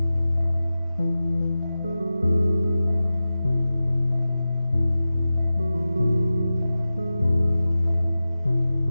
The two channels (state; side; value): inverted; both; correlation -0.94